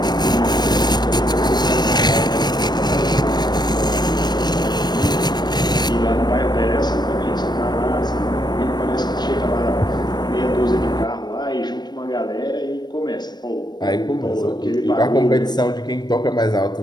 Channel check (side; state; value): right; late; 0.20 ms